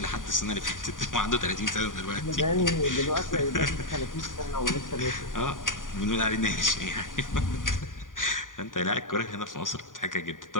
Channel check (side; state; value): right; late; 0.89 ms